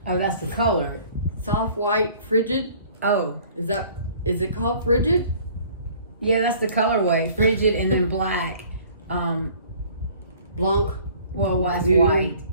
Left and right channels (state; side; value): inverted; both; correlation -0.53